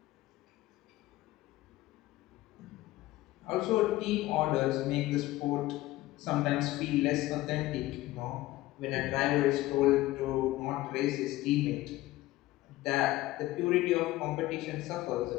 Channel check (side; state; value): right; quieter; 17.1 dB